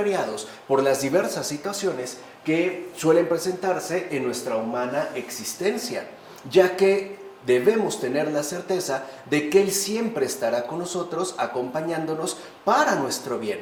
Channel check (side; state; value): both; identical; correlation 1.00